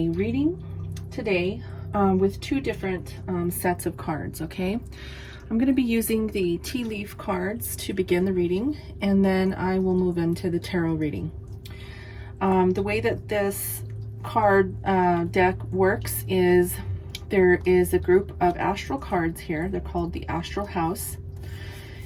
reading today with two different sets of cards, okay? I'm going to be using the tea leaf cards to begin the reading, and then I will move into the tarot reading. The way that this card deck works is there is a group of astral cards here. They're called the Astral House.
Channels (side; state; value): both; identical; correlation 1.00